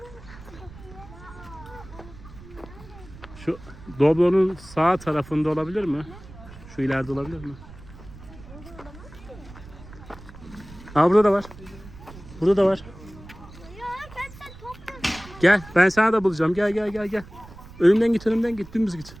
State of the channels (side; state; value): right; noise; rumble, 18 dB below the sound